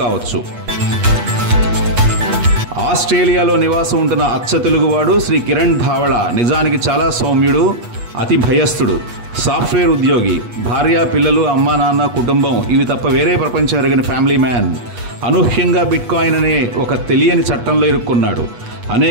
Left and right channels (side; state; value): left; late; 8.3 ms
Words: కావచ్చు. ఆస్ట్రేలియాలో నివాసం ఉంటున్న అచ్చ తెలుగువాడు శ్రీ కిరణ్ ధావళ నిజానికి చాలా సౌమ్యుడు, అతి భయస్థుడు. సాఫ్ట్వేర్ ఉద్యోగి, భార్య, పిల్లలు, అమ్మా నాన్న, కుటుంబం ఇవి తప్ప వేరే ప్రపంచం ఎరగని ఫ్యామిలీ మ్యాన్. అనూహ్యంగా బిట్కాయిన్ అనే ఒక తెలియని చట్టంలో ఇరుక్కున్నాడు.